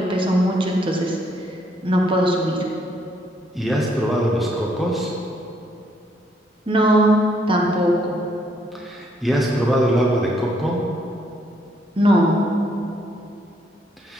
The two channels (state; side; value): normal; both; correlation 0.71